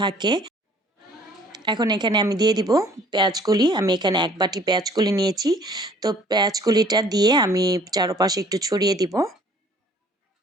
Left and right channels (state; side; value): normal; both; correlation 0.56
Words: থাকে। এখন এখানে আমি দিয়ে দিব পেঁয়াজকলি। আমি এখানে এক বাটি পেঁয়াজকলি নিয়েছি। তো পেঁয়াজকলিটা দিয়ে আমি চারপাশে একটু ছড়িয়ে দিব।